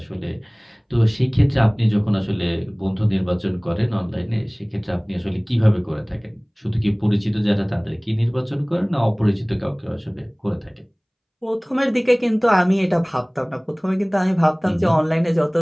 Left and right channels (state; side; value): identical; both; correlation 1.00